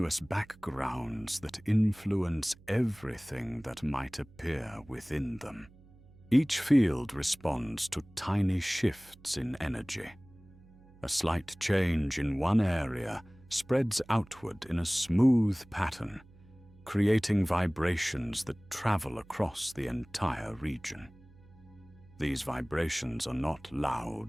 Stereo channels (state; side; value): noise; right; hum, 25 dB below the sound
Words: backgrounds that influence everything that might appear within them. Each field responds to tiny shifts in energy. A slight change in one area spreads outward in a smooth pattern, creating vibrations that travel across the entire region. These vibrations are not